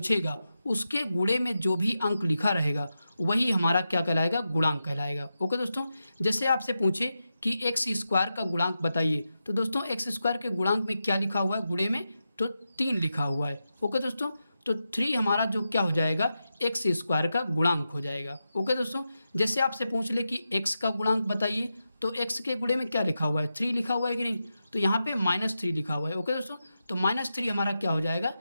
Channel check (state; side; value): inverted; both; correlation -0.89